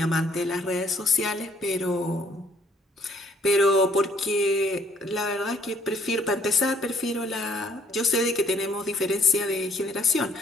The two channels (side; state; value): both; normal; correlation 0.63